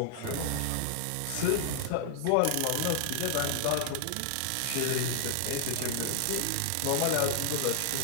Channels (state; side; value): different; both; correlation 0.00